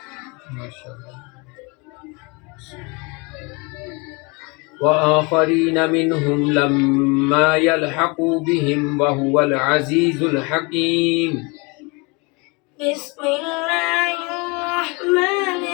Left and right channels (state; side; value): quieter; right; 29.0 dB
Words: माशाल्लाह وآخرين منهم لما يلحقوا بهم وهو العزيز الحكيم بسم الله الرحمن